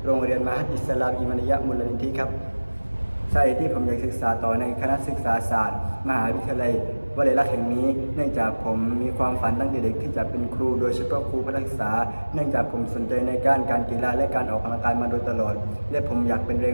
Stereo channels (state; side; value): inverted; both; correlation -1.00